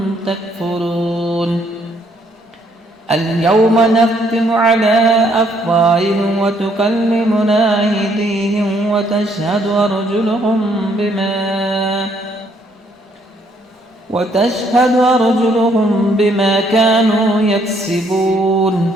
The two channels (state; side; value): normal; both; correlation 0.68